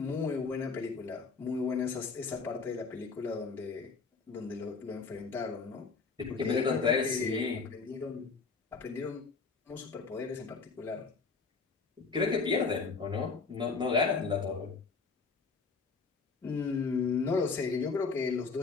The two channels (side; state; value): right; quieter; 4.7 dB